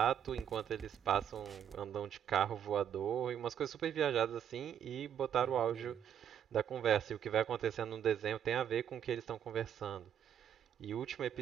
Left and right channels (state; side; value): quieter; left; 9.2 dB